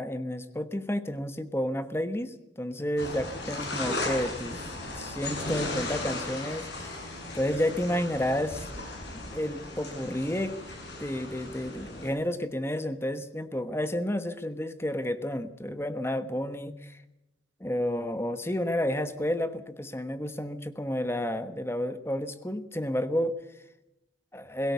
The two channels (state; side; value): normal; both; correlation 0.75